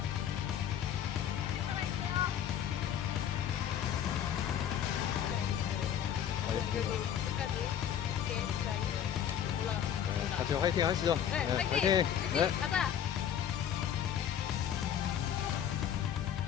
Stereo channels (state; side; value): quieter; right; 9.4 dB